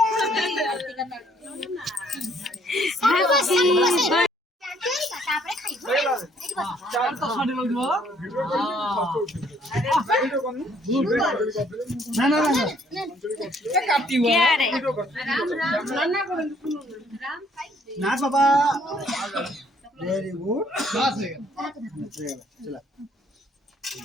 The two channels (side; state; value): both; normal; correlation 0.64